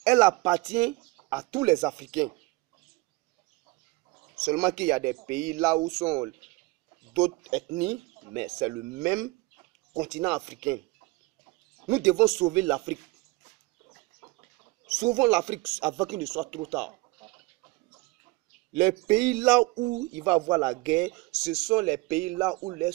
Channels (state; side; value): quieter; left; 22.8 dB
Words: Elle appartient à tous les Africains. Seulement qu'il y a des pays là où sont d'autres ethnies, mais c'est le même continent africain. Nous devons sauver l'Afrique. Sauvons l'Afrique avant qu'il ne soit trop tard. Les pays là où il va y avoir la guerre, ce sont les pays là où les